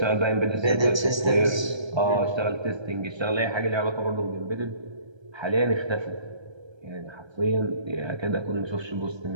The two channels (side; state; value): left; late; 1.3 ms